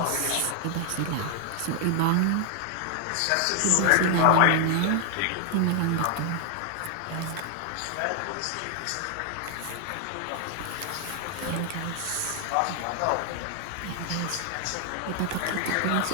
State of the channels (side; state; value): both; different; correlation 0.00